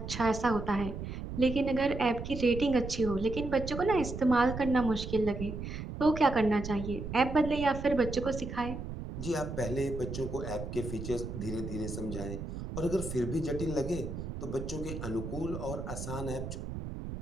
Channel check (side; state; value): right; noise; rumble, 7 dB below the sound